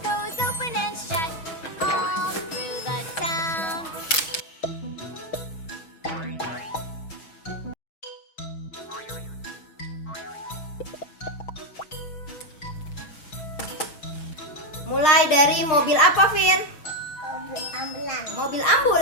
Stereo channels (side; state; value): right; late; 6.3 ms